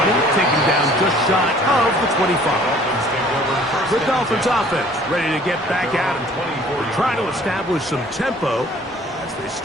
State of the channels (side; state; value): both; normal; correlation 0.54